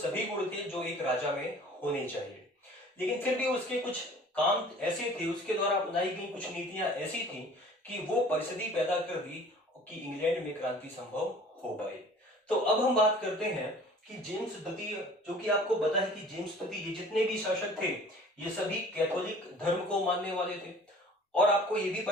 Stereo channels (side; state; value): both; normal; correlation 0.48